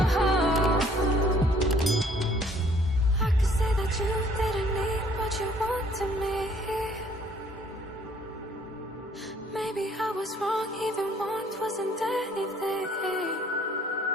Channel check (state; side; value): normal; both; correlation 0.60